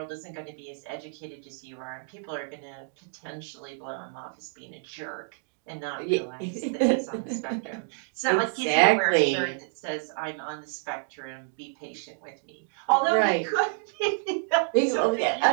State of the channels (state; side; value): silent; left; digital silence